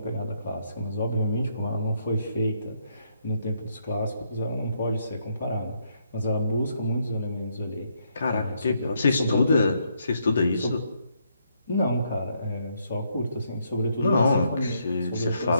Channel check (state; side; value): inverted; both; correlation -0.75